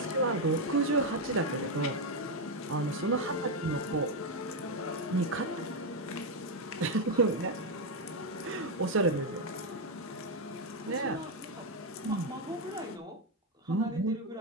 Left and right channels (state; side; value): normal; both; correlation 0.04